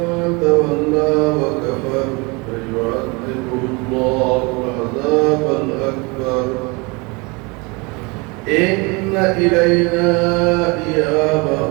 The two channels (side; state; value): left; quieter; 28.0 dB